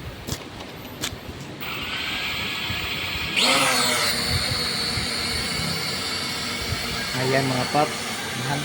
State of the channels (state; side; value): identical; both; correlation 1.00